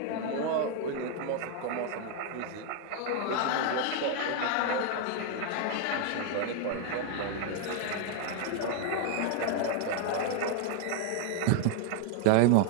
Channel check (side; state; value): both; different; correlation 0.00